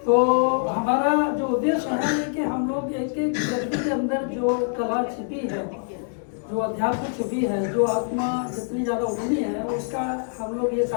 तो हमारा जो उद्देश्य है कि हम लोग एक एक व्यक्ति के अंदर जो कला छिपी है, जो अध्यात्म छिपी है, जो आत्मा जितनी ज़्यादा उठनी है, उसका हम लोग ये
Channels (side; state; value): right; silent; digital silence